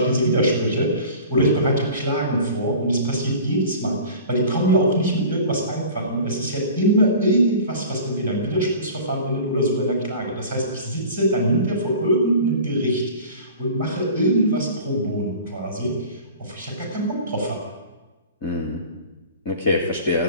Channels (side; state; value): both; inverted; correlation -0.41